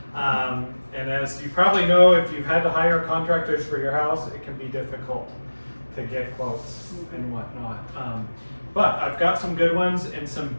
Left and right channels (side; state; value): both; inverted; correlation -1.00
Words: now. And as you probably know, if you've had to hire contractors for your house, it can be difficult to get quotes and whatnot. But I've got some good ones and some